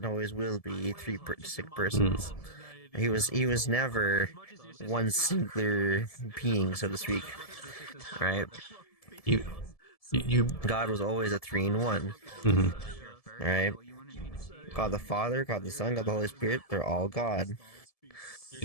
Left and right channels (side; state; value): right; late; 1.7 ms